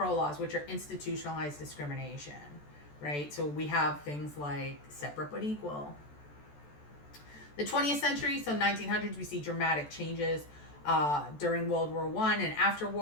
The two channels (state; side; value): late; right; 14 ms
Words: laws, which are institutionalized discrimination, right? So we have things like separate but equal. The 20th century, so 1900s, we see dramatic changes during World War I and after